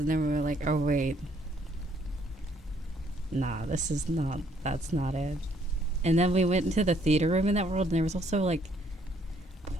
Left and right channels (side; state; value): both; normal; correlation 0.66